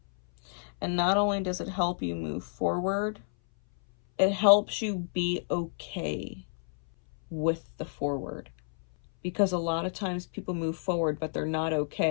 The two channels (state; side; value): silent; right; 58 dB below the other